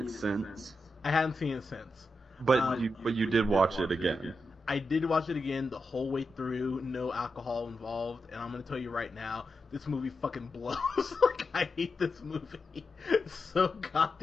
since, I hadn't seen it since. but you did watch it again. I did watch it again the whole way through, no alcohol involved, and I'm gonna tell you right now, this movie fucking blows. Like, I hate this movie so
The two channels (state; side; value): normal; both; correlation 0.87